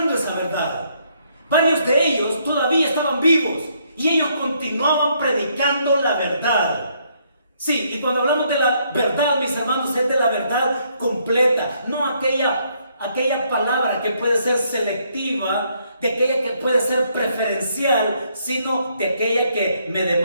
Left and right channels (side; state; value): both; inverted; correlation -0.71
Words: esa verdad. Varios de ellos todavía estaban vivos y ellos continuaban predicando la verdad. Sí, y cuando hablamos de la verdad, mis hermanos, es de la verdad completa, no aquella palabra que puede ser selectiva, de aquella que puede ser preferencial, sino de aquella que me